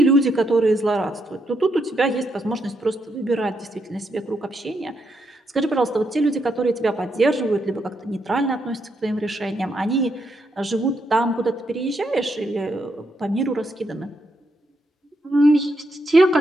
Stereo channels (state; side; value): normal; both; correlation 0.79